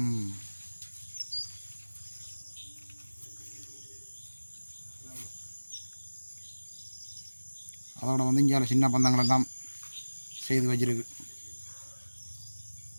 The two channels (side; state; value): both; inverted; correlation -1.00